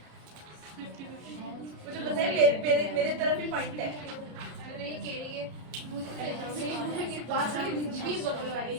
मुझे पता है मेरे तरफ ही पॉइंट है। अरे ये केड़ी है, मुझे पास वाली दीदी भी बगल वाली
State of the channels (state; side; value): late; left; 33 ms